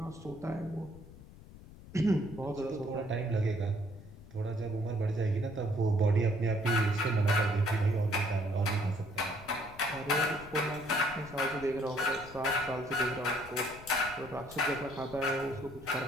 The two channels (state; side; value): noise; left; rumble, 18 dB below the sound